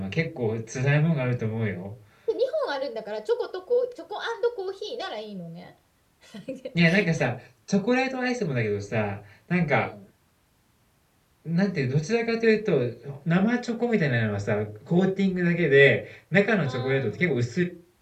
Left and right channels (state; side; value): identical; both; correlation 1.00